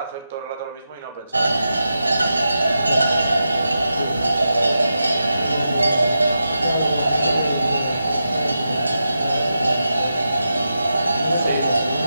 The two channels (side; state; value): both; inverted; correlation -0.88